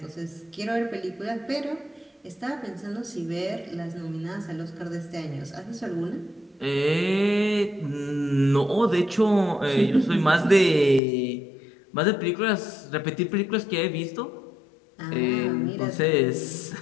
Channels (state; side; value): drops out; right; at 11.0 s